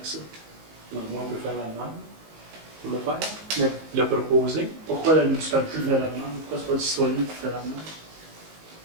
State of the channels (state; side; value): late; left; 19 ms